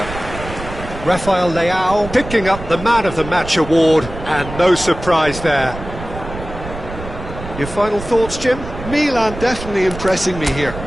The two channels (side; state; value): right; noise; rumble, 11 dB below the sound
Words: Rafael Leao picking up the Man of the Match award, and no surprise there. Your final thoughts, Jim? Milan definitely impressing me here,